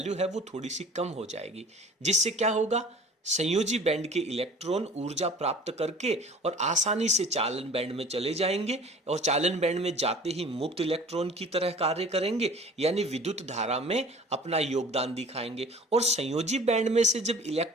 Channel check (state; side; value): normal; both; correlation 0.46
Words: है वो थोड़ी सी कम हो जाएगी, जिससे क्या होगा, संयोजी बैंड के इलेक्ट्रॉन ऊर्जा प्राप्त करके और आसानी से चालन बैंड में चले जाएंगे, और चालन बैंड में जाते ही मुक्त इलेक्ट्रॉन की तरह कार्य करेंगे, यानी विद्युत धारा में अपना योगदान दिखाएंगे। और संयोजी बैंड में से जब